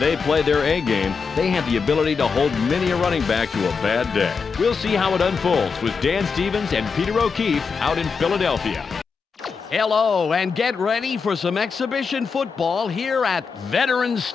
play their A game, they have the ability to hold many a running back to a bad day. We'll see how it unfolds with Dan Stevens and Peter O'Keefe out in Philadelphia. Hello, and get ready for some exhibition football here at Veterans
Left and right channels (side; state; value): right; quieter; 5.4 dB